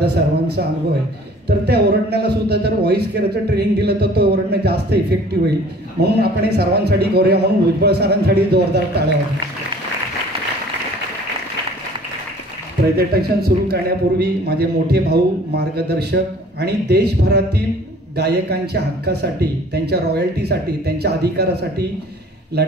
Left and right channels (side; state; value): both; normal; correlation 0.51